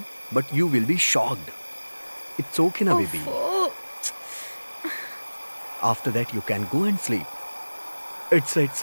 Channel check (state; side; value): inverted; both; correlation -1.00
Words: but you will be shocked. It's okay ना बेबी। ओफो। After that you can go and sleep. It's